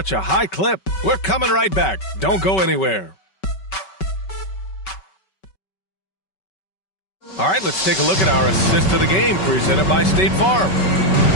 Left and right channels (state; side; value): late; right; 5.3 ms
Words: a high clip. We're coming right back. Don't go anywhere. All right, let's take a look at our assist of the game presented by State Farm.